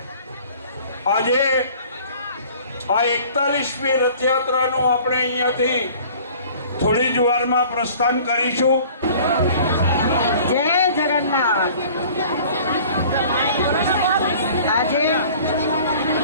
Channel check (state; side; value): inverted; both; correlation -0.49